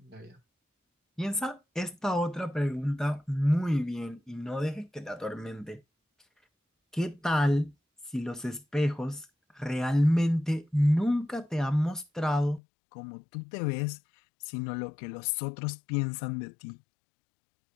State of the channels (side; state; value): right; drops out; at 12.6 s